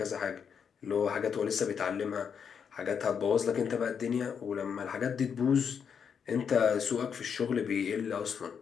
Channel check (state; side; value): quieter; right; 7.0 dB